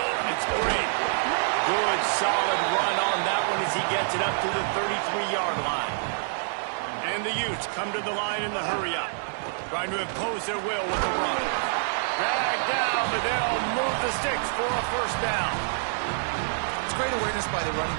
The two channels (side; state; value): left; silent; digital silence